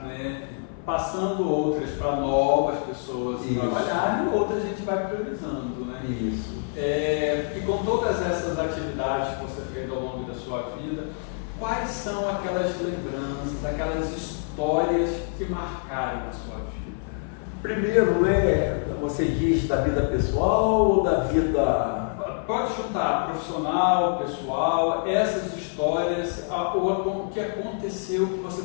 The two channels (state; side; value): silent; right; 56 dB below the other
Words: né? Passando outras para novas pessoas trabalharem, outras a gente vai priorizando, né? Isso. E com todas essas atividades que você fez ao longo da sua vida, quais são aquelas lembranças, aquelas histórias que marcaram a sua vida? Primeiro, né, você diz da vida pessoal ou da vida... Pode chutar, profissional, pessoal, essas histórias, ou o que aconteceu que você